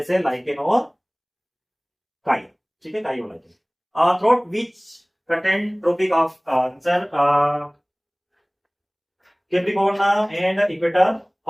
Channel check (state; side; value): identical; both; correlation 1.00